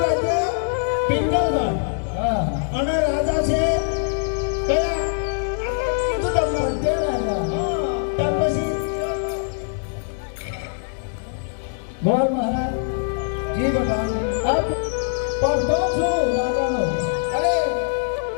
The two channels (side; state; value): right; silent; digital silence